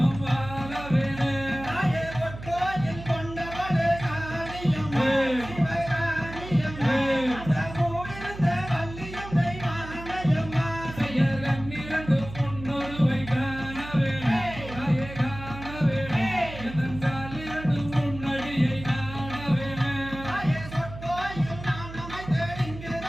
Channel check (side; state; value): right; noise; hum, 12 dB below the sound